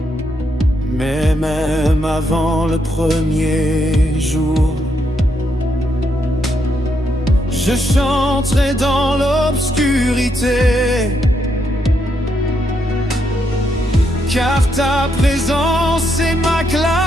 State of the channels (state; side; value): normal; both; correlation 0.78